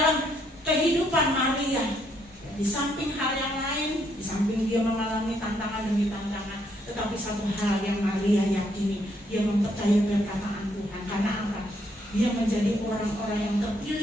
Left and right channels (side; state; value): both; normal; correlation 0.72